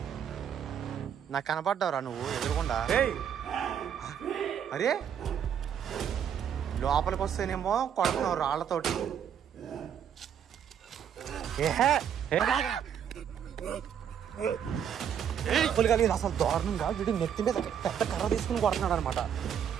నాకు కనపడ్డావురా నువ్వు ఎదురుకుండా. అరే లోపలికి వస్తేనేమో కొడుతున్నావు రాళ్లతోటి. అసలు దారుణంగా వీడు నెత్తి మీద పెద్ద కర్ర తీసుకుని కొడుతున్నాడు అనమాట.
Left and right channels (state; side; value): quieter; left; 8.6 dB